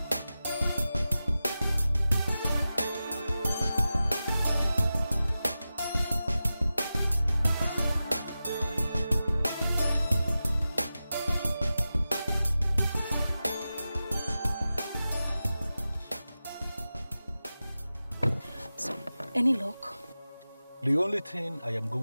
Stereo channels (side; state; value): both; inverted; correlation -0.93